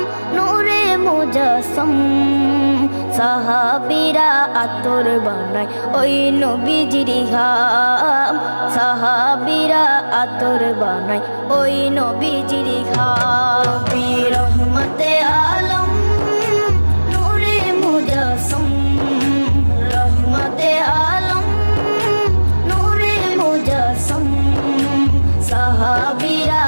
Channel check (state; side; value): inverted; both; correlation -1.00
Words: नूरे मुजस्सम। साहाबीरा आतর বানায় ওই নবীজির ঘাম, সাহাবীরা আতর বানায় ওই নবীজির ঘাম। রহমতে আলম নূরে মুজস্সম, রহমতে আলম নূরে মুজস্সম। সাহাবীরা